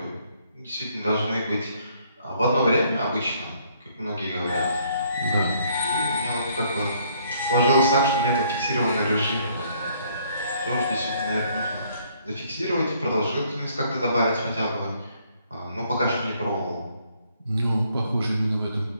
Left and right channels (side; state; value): both; inverted; correlation -0.65